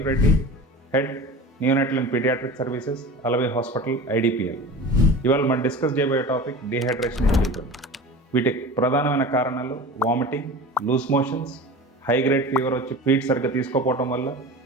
Reddy, Head Neonatal and Pediatric Services, Alavai Hospital, IDPL. ఇవాళ మనం డిస్కస్ చేయబోయే టాపిక్ డీహైడ్రేషన్ ఇన్ చిల్డ్రన్. వీటికి ప్రధానమైన కారణాలు vomiting, loose motions, high grade fever వచ్చి ఫీడ్ సరిగ్గా తీసుకోకపోవటం వల్ల,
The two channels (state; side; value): normal; both; correlation 0.35